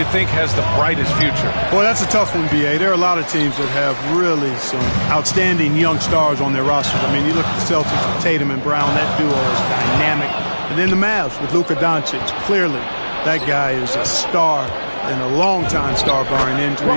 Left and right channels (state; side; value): inverted; both; correlation -1.00